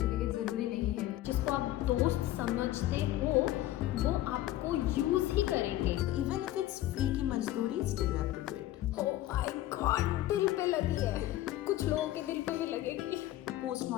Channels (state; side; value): quieter; right; 14.7 dB